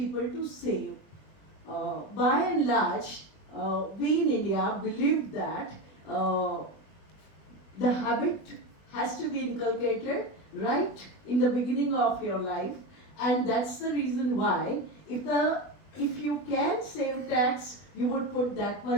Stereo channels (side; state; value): right; late; 20 ms